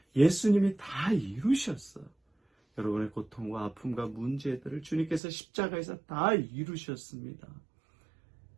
예수님이 다 이루셨어요. 여러분의 고통과 아픔과 문제들을 주님께서 십자가에서 다 이루셨습니다.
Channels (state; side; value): drops out; left; at 5.2 s